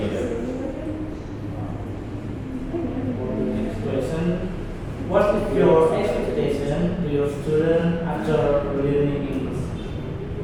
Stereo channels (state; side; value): identical; both; correlation 1.00